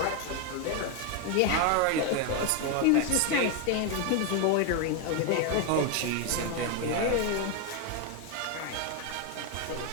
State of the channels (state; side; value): different; both; correlation 0.01